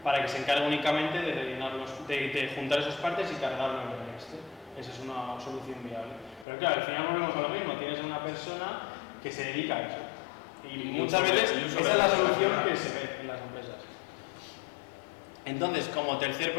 para que se encargue únicamente de de juntar esas partes y cargarlo en el Excel. Esa es una solución viable. Pero claro, al final volvemos a lo mismo, tienes a una persona que se dedica a eso. Y muchas veces esa es la solución que se ve en las empresas. Entonces, como tercer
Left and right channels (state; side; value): drops out; right; at 6.5 s